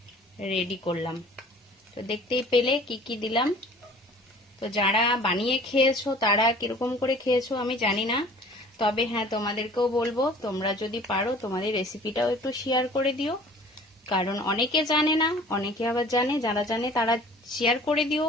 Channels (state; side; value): normal; both; correlation 0.48